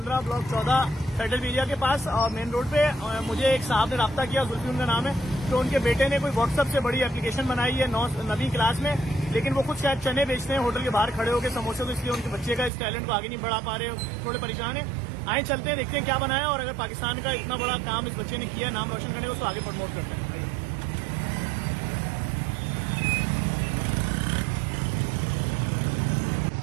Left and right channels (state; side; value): drops out; left; at 12.7 s